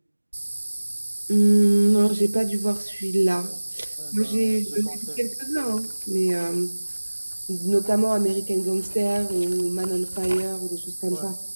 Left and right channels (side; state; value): both; inverted; correlation -1.00